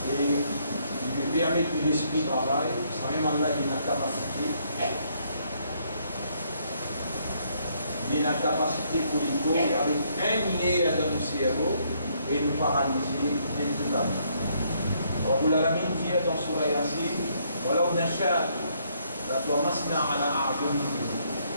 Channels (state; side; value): inverted; both; correlation -0.70